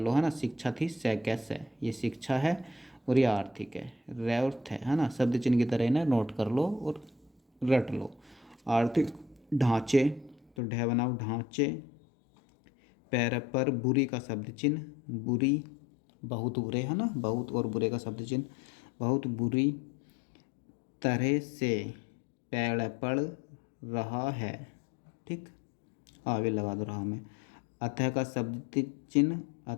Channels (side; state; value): right; drops out; at 10.5 s